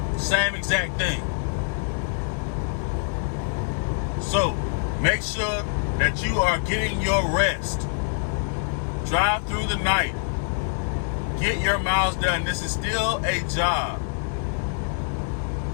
Same exact thing. So, make sure that you are getting your rest. Drive through the night. Get your miles done. This is still a job.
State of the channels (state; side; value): silent; right; digital silence